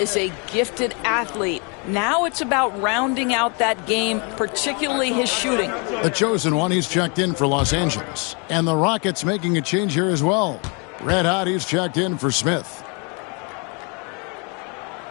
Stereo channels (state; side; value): quieter; right; 33.8 dB